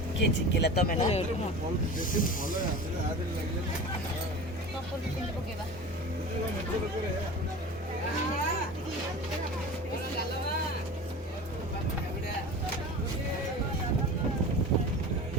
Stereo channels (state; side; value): normal; both; correlation 0.34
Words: କିଏ ଚିକିଲା ତମେ ନା? ପକେଇବା